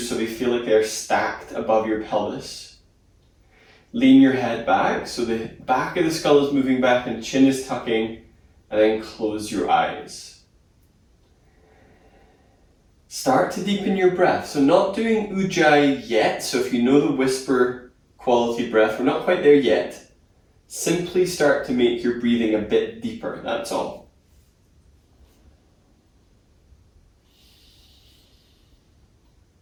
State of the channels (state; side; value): identical; both; correlation 1.00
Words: so they feel like they're stacked above your pelvis. Lean your head back so the back of the skull is moving back and chin is tucking, and then close your eyes. Start to deepen your breath. So not doing ujjayi yet, so if you know the whisper quality breath, we're not quite there yet. Simply start to make your breathing a bit deeper, that's all.